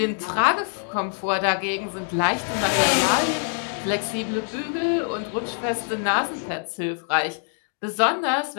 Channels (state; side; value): silent; right; 55 dB below the other